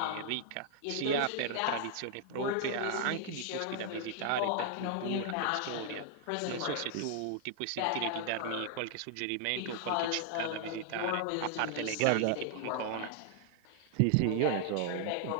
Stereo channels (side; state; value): both; different; correlation 0.00